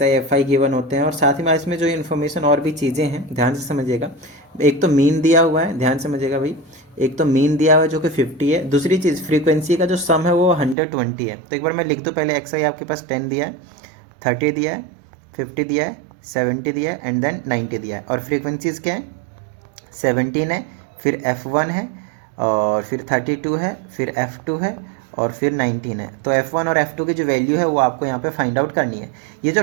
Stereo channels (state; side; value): drops out; left; at 10.8 s